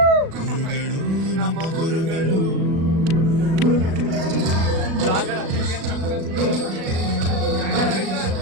ಗುರುಗಳು ನಮ್ಮ ಗುರುಗಳು.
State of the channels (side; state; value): left; late; 37 ms